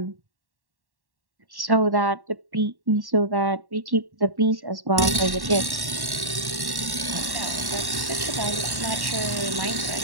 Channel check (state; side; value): late; left; 1.1 ms